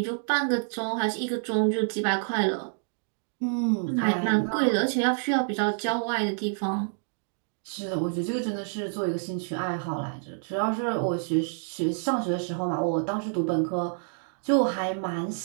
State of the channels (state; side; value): silent; left; digital silence